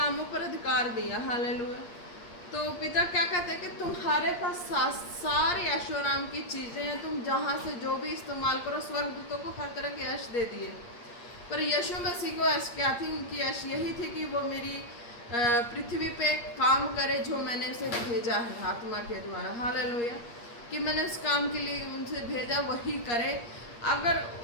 पर अधिकार दिया, हालेलुया। तो पिता क्या कहते हैं कि तुम्हारे पास सारी ऐशोआराम की चीज़ें हैं, तुम जहाँ से जो भी इस्तेमाल करो, स्वर्गदूतों को हर तरह के ऐश दे दिए, पर यीशु मसीह को ऐश क्या थी, उनकी ऐश यही थी कि वो मेरी पृथ्वी पे काम करे जो मैंने उसे भेजा है आत्मा के द्वारा, हालेलुया, कि मैंने उस काम के लिए उनसे भेजा वही करे। अगर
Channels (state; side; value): late; right; 8.5 ms